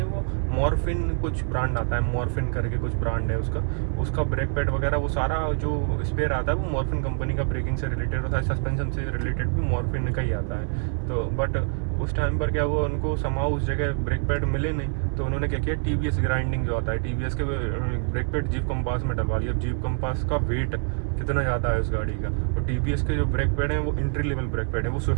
वो मॉर्फिन कुछ ब्रांड आता है, मॉर्फिन करके कुछ ब्रांड है उसका ब्रेक पैड वगैरह वो सारा जो स्पेयर आता है वो मॉर्फिन कंपनी का, ब्रेकिंग से रिलेटेड और सस्पेंशन से रिलेटेड भी मॉर्फिन का ही आता है। तो बट उस टाइम पर क्या हुआ, उनको समाओ उस जगह ब्रेक पैड मिले नहीं, तो उन्होंने क्या किया, TVS ग्राइंडिंग जो आता है TVS के ब्रेक पैड जीप कंपास में डलवा लिया। जीप कंपास का वेट कितना ज़्यादा है उस गाड़ी का, और TVS के जो ब्रेक पैड हैं वो एंट्री लेवल ब्रेक पैड है। वो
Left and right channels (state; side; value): silent; left; 61 dB below the other